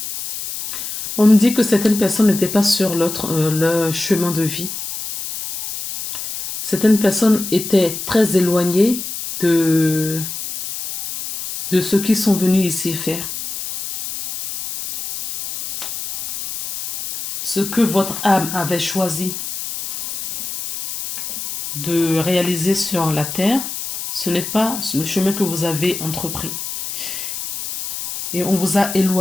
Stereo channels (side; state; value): left; noise; hiss, 7 dB below the sound